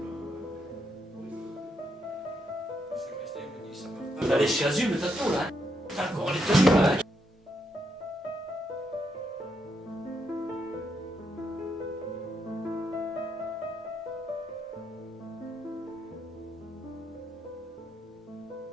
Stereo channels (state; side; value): normal; both; correlation 0.79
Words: T'as les chasubles, t'as tout là. T'as encore les tenues là.